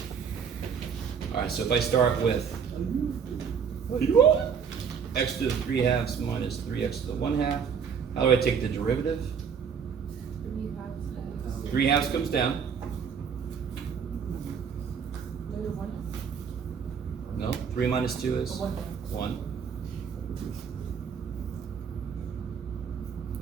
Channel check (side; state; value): left; quieter; 6.8 dB